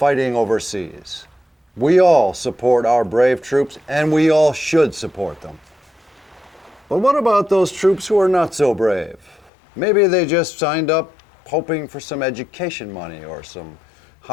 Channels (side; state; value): right; drops out; at 9.5 s